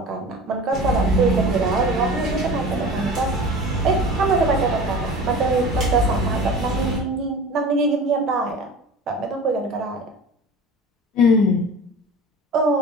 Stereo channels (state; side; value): normal; both; correlation 0.38